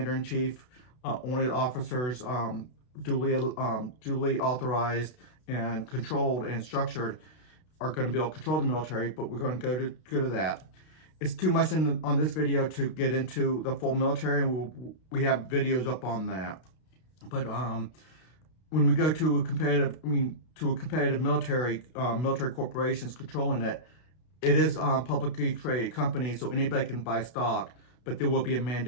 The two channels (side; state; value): right; late; 32 ms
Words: only officers, duly authorized and controlled and structured are going to be able to control the military. But we're going to go to that. It's too much on this video to get into the full military, and we have videos up on that. But when we go to a competitive military corporations controlling it, it is publicly traded company, so anybody can buy stock, but there will be a